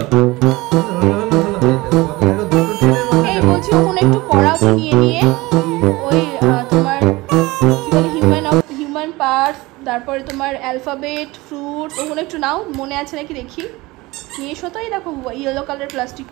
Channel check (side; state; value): left; quieter; 21.3 dB